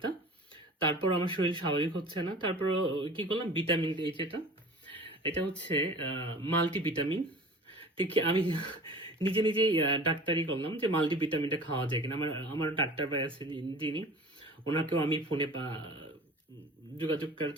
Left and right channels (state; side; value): normal; both; correlation 0.42